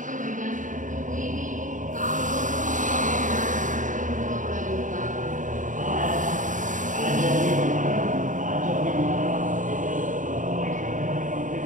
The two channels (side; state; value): left; late; 0.37 ms